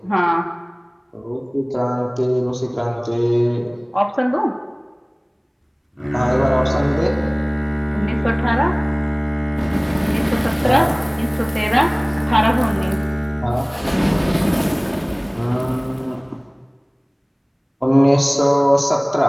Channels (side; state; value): both; identical; correlation 1.00